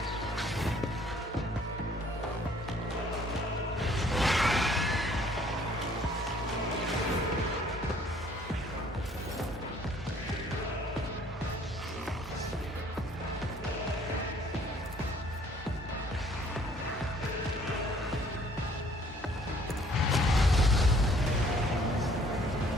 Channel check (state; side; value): normal; both; correlation 0.59